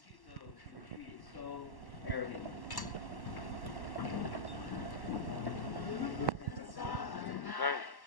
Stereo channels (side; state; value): right; late; 1.1 ms